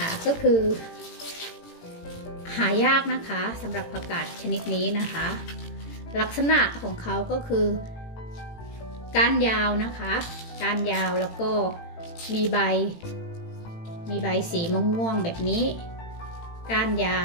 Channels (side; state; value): right; late; 18 ms